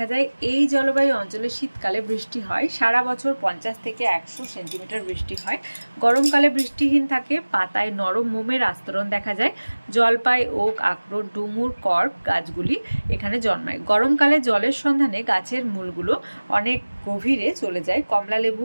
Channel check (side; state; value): both; inverted; correlation -1.00